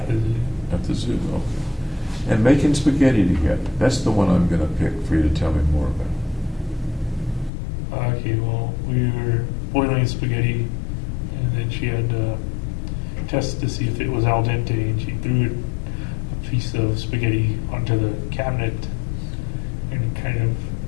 the zoo. at the zoo, okay. And making spaghetti together, that's the one I'm gonna pick for you to tell me more about. Okay, well, we were boiling spaghetti, and then she had to test to see if it was al dente, and she threw a piece of spaghetti onto the cabinet, and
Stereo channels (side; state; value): right; drops out; at 7.5 s